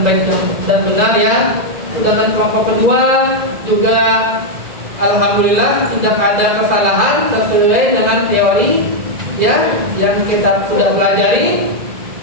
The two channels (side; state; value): left; late; 2.0 ms